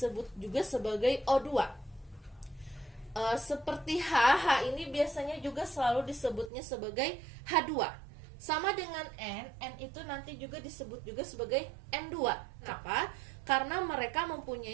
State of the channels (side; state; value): left; drops out; at 6.5 s